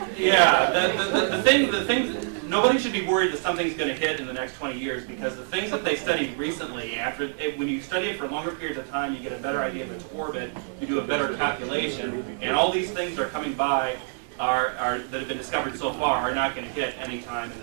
yeah, the things, nobody should be worried that something's going to hit in the next 20 years, because the things that they studied recently, when you study it for longer periods of time, you get a better idea of its orbit, you do a better calculation, and all these things that are coming by that have been discovered so far are not going to hit any time in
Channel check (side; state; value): left; silent; digital silence